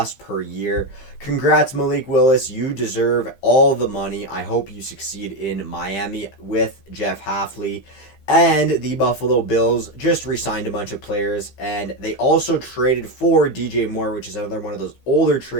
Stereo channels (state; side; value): late; right; 15 ms